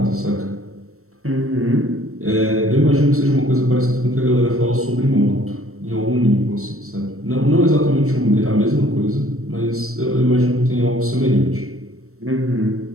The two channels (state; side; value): late; left; 0.63 ms